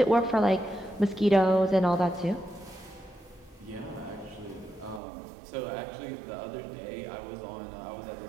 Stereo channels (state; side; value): drops out; left; at 5.0 s